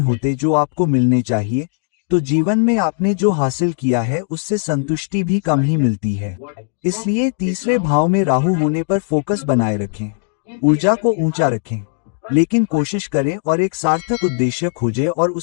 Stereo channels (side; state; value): right; silent; 67 dB below the other